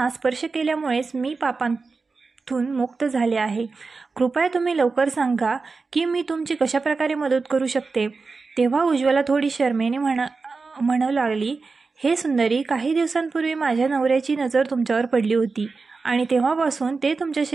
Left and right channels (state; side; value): quieter; left; 4.3 dB